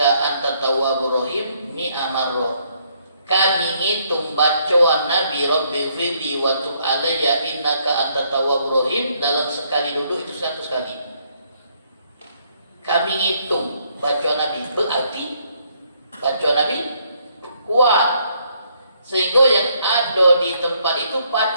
antat tawwabur rahim mi'a marrah. Kami ngitung bacaan Nabi Rabbighfirli wa tub alayya innaka antat tawwabur rahim dalam sekali duduk itu 100 kali. Kami ngitung bacaan Nabi, berarti bacaan Nabi kuat, sehingga yang ada di tempat itu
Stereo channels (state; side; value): inverted; both; correlation -0.69